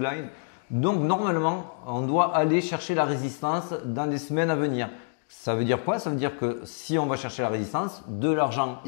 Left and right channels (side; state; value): right; silent; 60 dB below the other